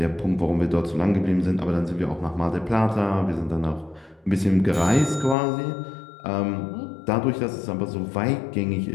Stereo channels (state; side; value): drops out; right; at 5.4 s